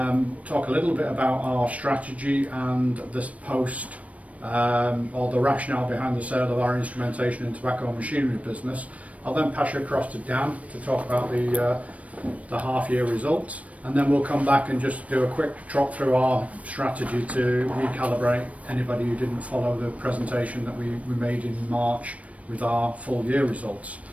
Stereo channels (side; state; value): left; late; 0.066 ms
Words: a little bit about our strategy and this post, or the rationale behind the sale of our instrumentation and tobacco machinery business. I'll then pass you across to Dan to talk about the half-year results, and then we'll come back and just do a quick trot through our strategy to recalibrate anybody who didn't follow the presentation that we made in March with our full-year results.